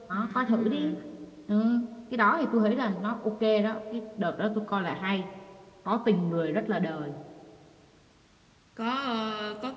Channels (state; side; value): identical; both; correlation 1.00